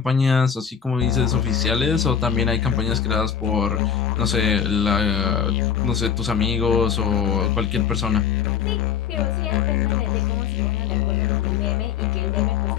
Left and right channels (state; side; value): quieter; right; 7.7 dB